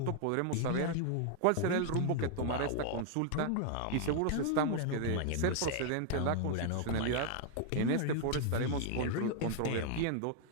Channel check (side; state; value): both; different; correlation 0.00